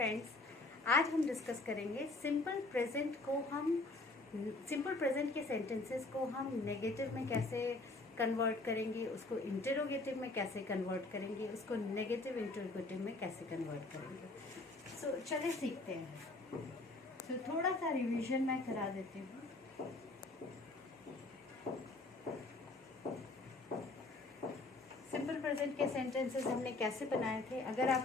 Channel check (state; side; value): quieter; right; 3.1 dB